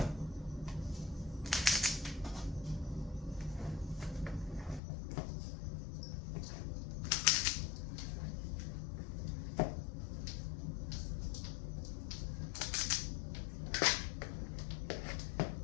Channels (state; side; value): drops out; right; at 4.8 s